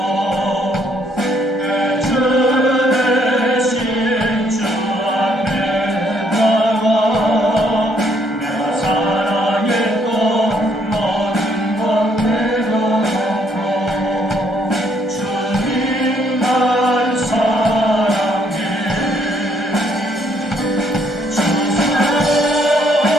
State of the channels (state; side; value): normal; both; correlation 0.69